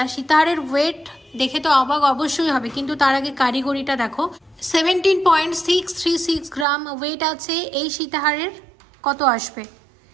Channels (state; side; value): drops out; left; at 6.7 s